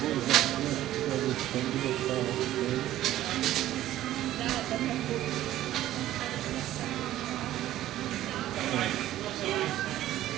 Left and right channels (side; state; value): left; quieter; 13.8 dB